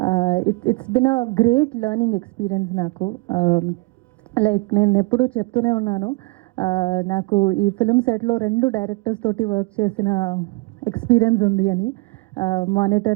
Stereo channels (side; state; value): left; quieter; 26.7 dB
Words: It's been a great learning experience నాకు. లైక్ నేను ఎప్పుడూ చెప్తూనే ఉన్నాను, నాకు ఈ ఫిల్మ్ సెట్లో 2 డైరెక్టర్స్ తోటి వర్క్ చేసిన ఎక్స్పీరియన్స్ ఉంది అని.